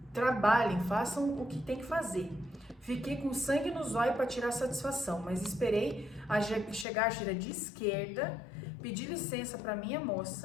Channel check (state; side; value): drops out; right; at 6.9 s